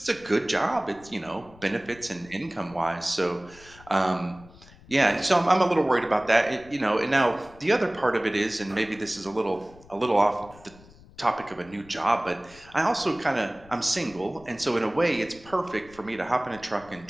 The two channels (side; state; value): left; noise; rumble, 23 dB below the sound